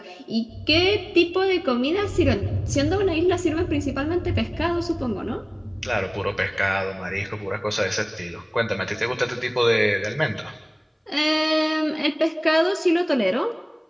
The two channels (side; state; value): both; identical; correlation 1.00